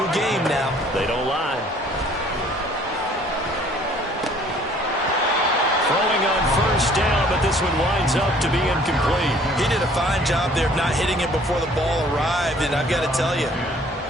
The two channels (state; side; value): normal; both; correlation 0.56